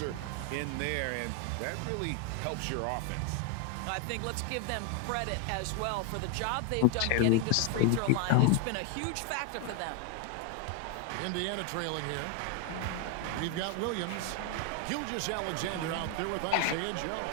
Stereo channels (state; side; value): different; both; correlation 0.00